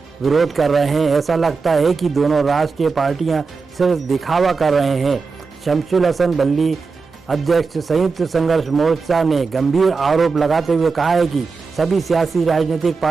विरोध कर रहे हैं। ऐसा लगता है कि दोनों राष्ट्रीय पार्टियां सिर्फ दिखावा कर रहे हैं। शमशुल हसन बल्ली अध्यक्ष संयुक्त संघर्ष मोर्चा ने गंभीर आरोप लगाते हुए कहा है कि सभी सियासी राजनीतिक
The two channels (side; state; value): left; quieter; 4.6 dB